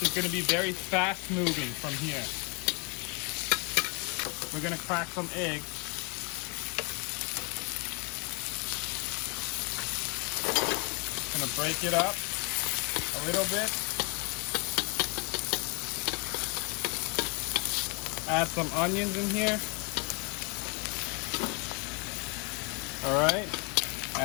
is going to be very fast moving from here. We're going to crack some eggs. Going to break it up a little bit. Add some onions in here. All right,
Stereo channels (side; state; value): right; quieter; 33.7 dB